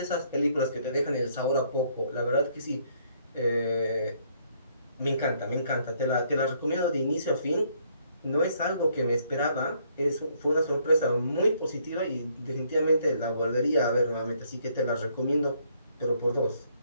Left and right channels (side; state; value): both; inverted; correlation -0.68